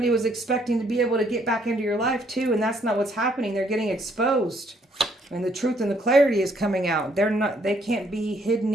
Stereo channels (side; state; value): both; normal; correlation 0.67